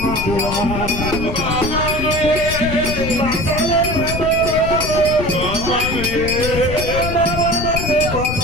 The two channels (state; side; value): noise; left; rumble, 6 dB below the sound